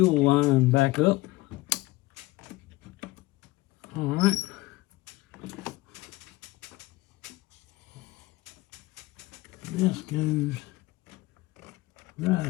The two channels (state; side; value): quieter; right; 19.9 dB